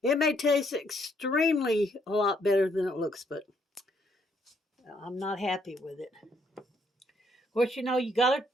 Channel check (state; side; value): normal; both; correlation 0.70